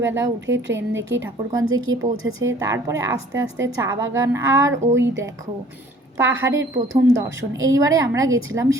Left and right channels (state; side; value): normal; both; correlation 0.54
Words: উঠে ট্রেন দেখি ঠাকুরগঞ্জে গিয়ে পৌঁছেছে। তারপরে আস্তে আস্তে চা বাগান, আর ওই দেখো পাহাড়ের প্রথম দর্শন। এইবারে আমরা গেছিলাম